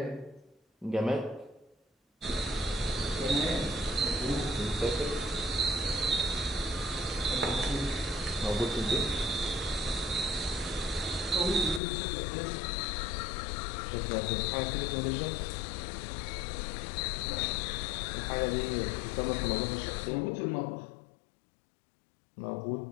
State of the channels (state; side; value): drops out; right; at 11.8 s